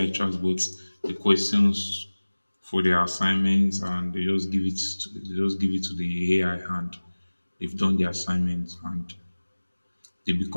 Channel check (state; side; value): inverted; both; correlation -1.00